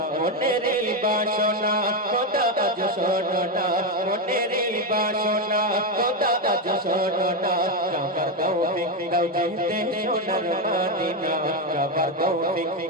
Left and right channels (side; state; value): both; normal; correlation 0.08